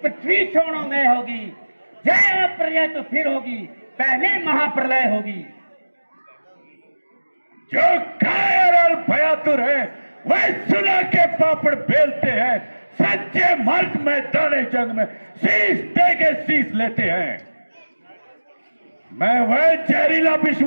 छोड़ो में होगी, जय प्रलय तो फिर होगी, पहले महाप्रलय होगी। जो कायर और भयातुर है वह सुना के पापड़ बेलते हैं, सच्चे मर्द मैदाने जंग में शीश दे के शीश लेते हैं। मैं वह जहरीला विष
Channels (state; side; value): inverted; both; correlation -1.00